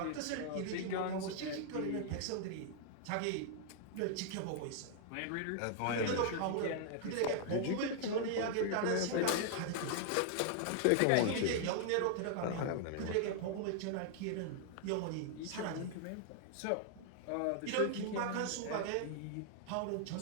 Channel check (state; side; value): different; both; correlation -0.01